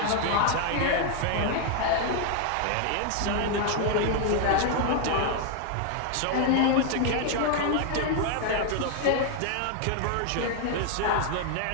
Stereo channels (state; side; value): different; both; correlation 0.00